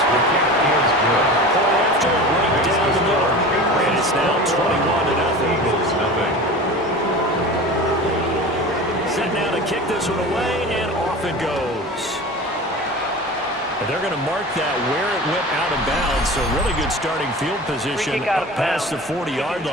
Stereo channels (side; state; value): both; normal; correlation 0.34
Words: Point after, right down the middle. And it's now 21-0. Set now to kick this one away, and off it goes. And they're going to mark that where it went out of bounds, so really good starting field position up past the 40-yard